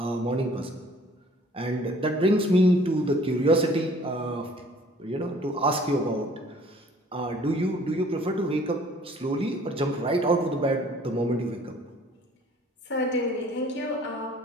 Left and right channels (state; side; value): normal; both; correlation 0.54